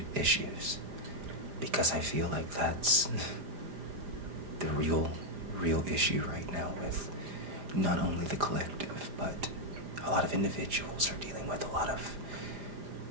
issues, because I feel like that's the real issue right now with not only the collective, but a lot of individuals are dealing with a lot of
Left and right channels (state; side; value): late; left; 4.9 ms